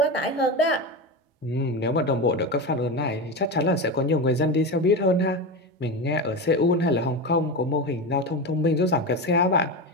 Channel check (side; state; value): both; normal; correlation 0.20